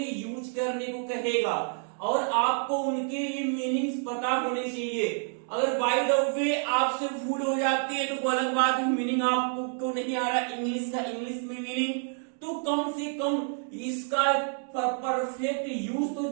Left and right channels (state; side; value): silent; left; 56 dB below the other